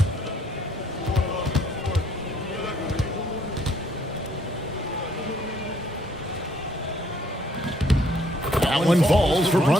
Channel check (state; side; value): normal; both; correlation 0.65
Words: That one falls for